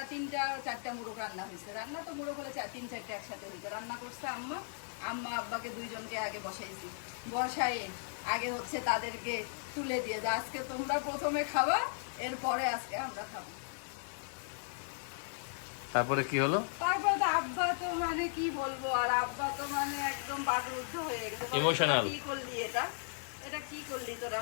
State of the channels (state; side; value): silent; right; digital silence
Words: মোরগ রান্না হয়েছে। রান্না তো মোরগ হলে 3-4টা একসাথে হয়েছে। রান্না করছে আম্মা, আব্বাকে 2 জনকে আগে বসাইছি। বসায়ে আগে হচ্ছে তাদেরকে তুলে দিয়ে যে আজকে তোমরা প্রথমে খাবা, এরপরে আজকে আমরা খাবো। তারপরে কি হলো? তারপরে তো আব্বা তো মানে কি বলবো, আর আব্বা তো মানে একদম বাকরুদ্ধ হয়ে গেছে, ইমোশনাল। কি করলি এটা কি করলি তোরা।